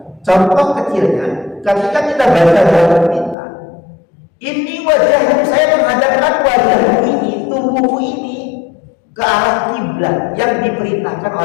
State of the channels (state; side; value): drops out; right; at 3.4 s